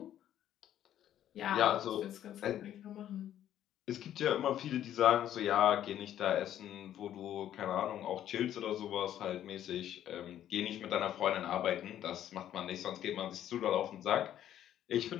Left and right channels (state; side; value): quieter; right; 11.3 dB